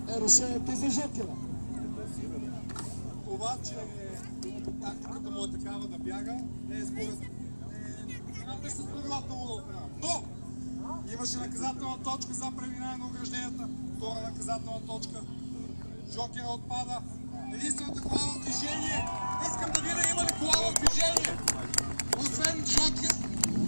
решението за Жокера? Обаче тактиката му е такава да бяга, не е според не с правилата му. Но имаше наказателна точка за преминаване на огражденията, втора наказателна точка. Жокера отпада. Единствената кола в движение. Искам да видя има ли кола в движение. Освен Жокер.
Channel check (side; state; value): both; inverted; correlation -1.00